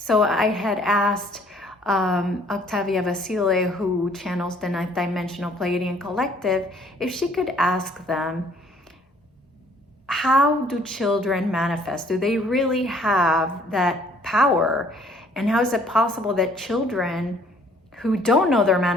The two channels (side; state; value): both; normal; correlation 0.59